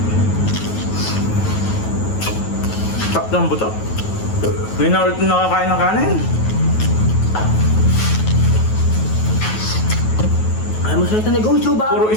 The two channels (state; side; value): late; right; 9.3 ms